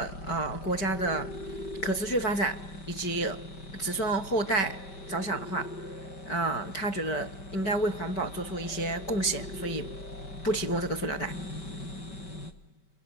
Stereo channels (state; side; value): late; right; 5.2 ms